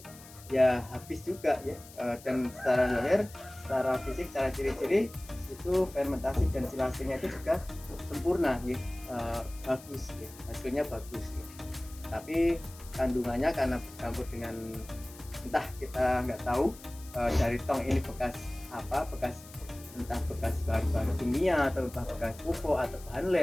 ya habis juga ya. Dan secara zahir, secara fisik, secara ciri-ciri itu fermentasi dan silasenya itu juga sempurna ya. Bagus ya, hasilnya bagus ya. Tapi kandungannya karena bercampur dengan entah kita nggak tahu dari tong ini bekas apa, entah bekas bahan-bahan kimia atau entah bekas pupuk atau bahan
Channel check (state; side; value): noise; left; hiss, 19 dB below the sound